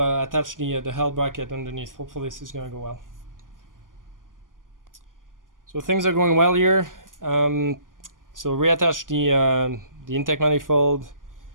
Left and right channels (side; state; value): left; late; 0.89 ms